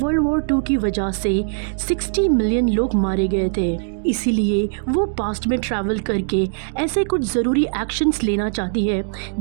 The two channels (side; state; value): left; silent; digital silence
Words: वर्ल्ड वॉर 2 की वजह से 60 मिलियन लोग मारे गए थे। इसीलिए वो पास्ट में ट्रैवल करके ऐसे कुछ ज़रूरी एक्शंस लेना चाहती है